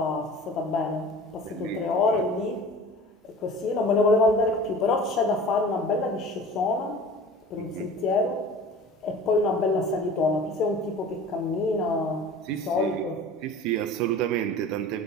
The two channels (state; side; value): normal; both; correlation 0.41